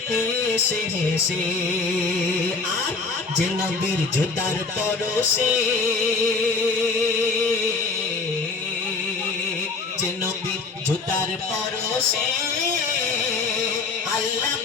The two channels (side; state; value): right; quieter; 4.2 dB